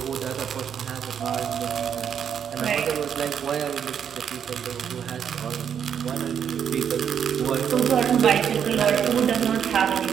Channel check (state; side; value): quieter; left; 8.2 dB